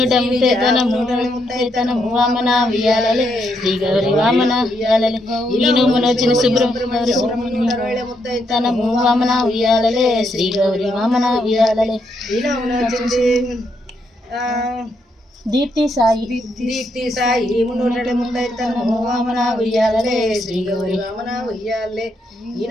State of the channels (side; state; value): both; normal; correlation 0.78